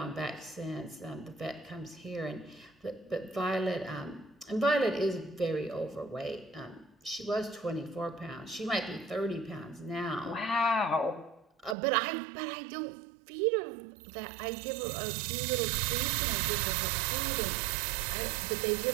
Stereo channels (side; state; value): left; drops out; at 11.8 s